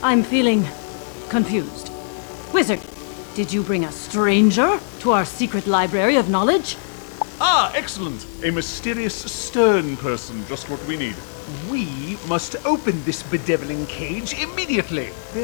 I'm feeling confused. Wizard, did you bring a stranger to our secret library of knowledge? Ah, excellent. A mysterious, stern person, just what we need. We must open this bedeviling cage immediately.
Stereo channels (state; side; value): silent; right; digital silence